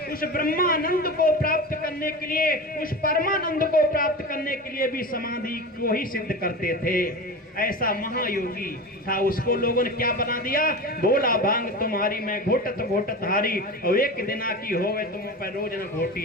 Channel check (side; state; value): both; normal; correlation 0.28